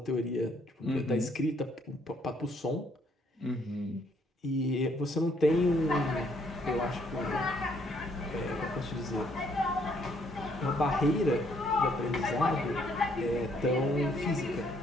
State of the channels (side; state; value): both; normal; correlation 0.68